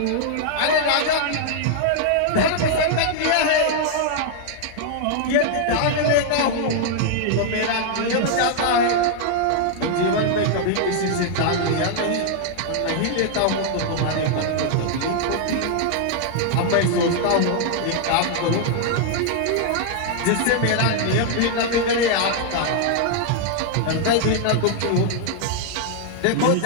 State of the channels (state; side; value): different; both; correlation 0.00